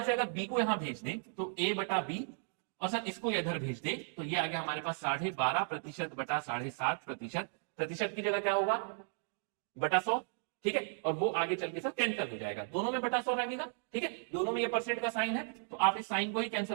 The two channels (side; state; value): left; silent; digital silence